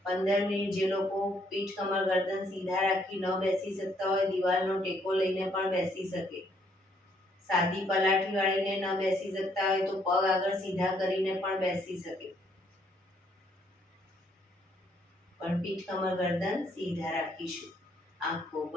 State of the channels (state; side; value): normal; both; correlation 0.69